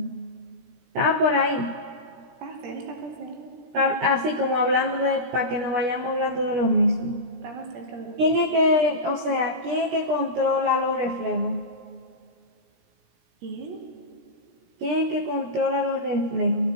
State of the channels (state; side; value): late; left; 17 ms